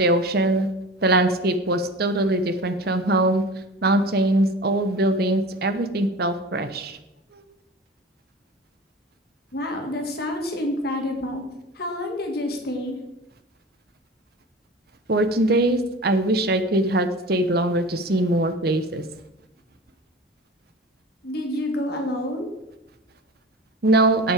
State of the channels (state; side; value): normal; both; correlation 0.36